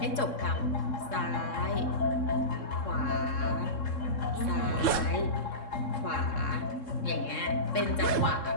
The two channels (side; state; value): right; late; 3.7 ms